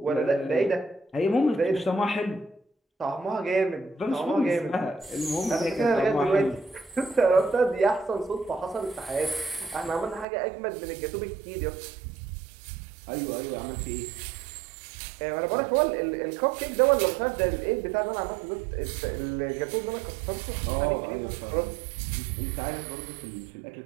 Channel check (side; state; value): left; drops out; at 10.2 s